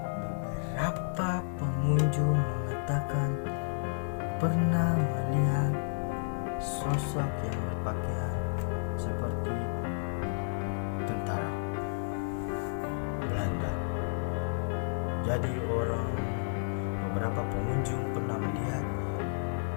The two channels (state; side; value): silent; right; digital silence